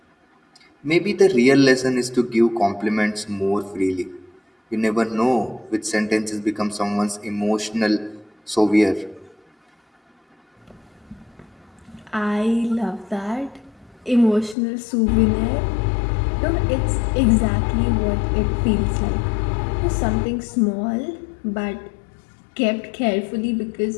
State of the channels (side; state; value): right; drops out; at 14.6 s